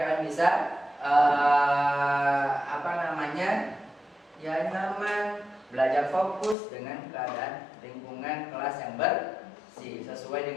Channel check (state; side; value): drops out; right; at 6.6 s